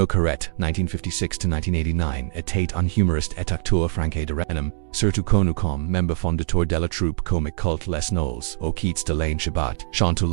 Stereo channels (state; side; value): silent; left; digital silence